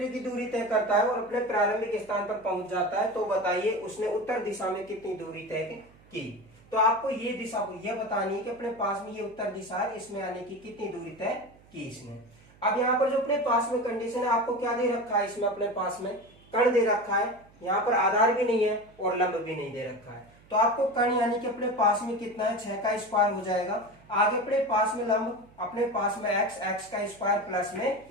की दूरी तय करता है और अपने प्रारंभिक स्थान पर पहुंच जाता है। तो बताइए उसने उत्तर दिशा में कितनी दूरी तय की। तो आपको ये दिशा ये बतानी है कि अपने पास में ये उत्तर दिशा है, इसमें आने की कितनी दूरी तय की इसने। अब यहाँ पर जो अपने पास में कंडीशन है, आपको क्या दे रखा है, इसमें अपने पास में कण दे रखा है। यहाँ पर आधार भी नहीं है और लंब भी नहीं दे रखा है। तो आपको कण यानी कि अपने पास में कितना है, 6 का स्क्वायर हो जाएगा। आगे अपने पास में लंब अपने पास में x का स्क्वायर प्लस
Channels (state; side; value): noise; right; hum, 27 dB below the sound